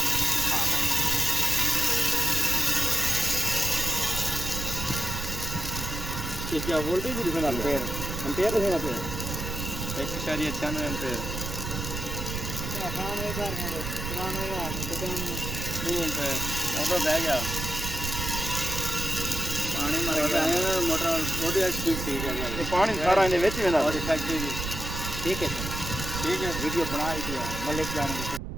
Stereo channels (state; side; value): noise; right; rumble, 5 dB below the sound